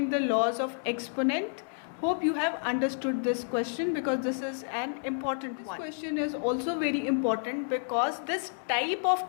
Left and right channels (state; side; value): silent; right; digital silence